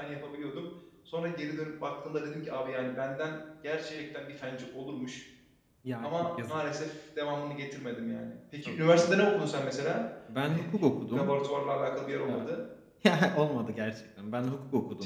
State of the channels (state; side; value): identical; both; correlation 1.00